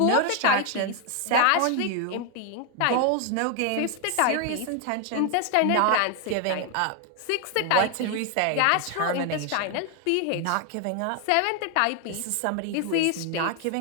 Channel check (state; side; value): different; both; correlation 0.01